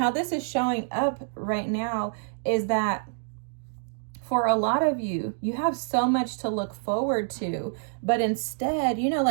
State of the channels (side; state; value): left; silent; digital silence